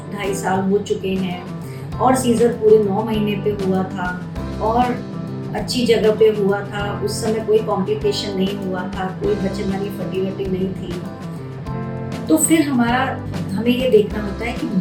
साल हो चुके हैं और सीजर पूरे 9 महीने पे हुआ था और अच्छी जगह पे हुआ था, उस समय कोई कॉम्प्लिकेशन नहीं हुआ था, कोई बच्चेदानी फटी नहीं थी। तो फिर हमें ये देखना होता है कि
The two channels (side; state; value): both; identical; correlation 1.00